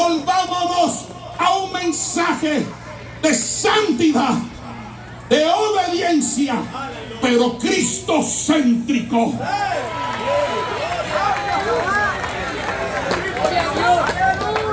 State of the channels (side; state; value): both; identical; correlation 1.00